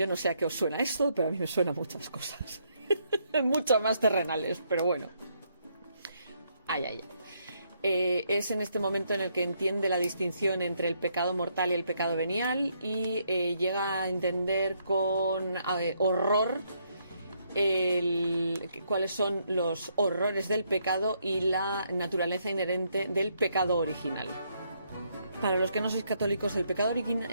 no sé a qué os suena esto, pero a mí me suena muchas cosas. Mucho más terrenales, pero bueno. Es en este momento en el que entiende la distinción entre el pecado mortal y el pecado venial y llega a entender con horror cuáles son los horrores del pecado y la naturaleza inherente del pecado original. Para los que no sois católicos, el pecado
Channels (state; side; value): inverted; both; correlation -0.74